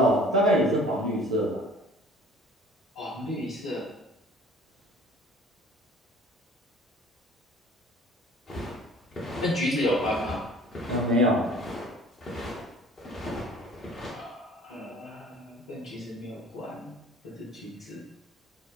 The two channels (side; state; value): both; normal; correlation 0.50